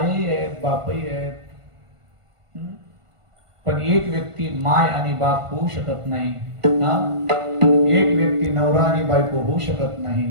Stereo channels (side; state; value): left; late; 1.5 ms